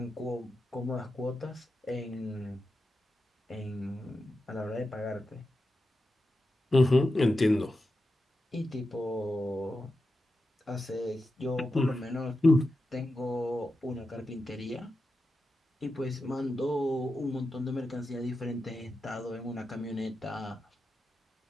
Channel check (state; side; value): normal; both; correlation 0.90